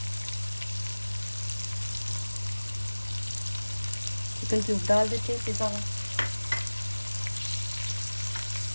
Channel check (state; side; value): inverted; both; correlation -1.00